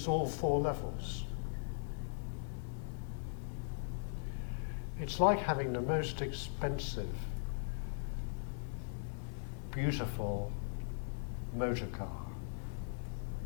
all 4 levels. It's like having the most expensive, beautiful motor car.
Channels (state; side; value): silent; right; digital silence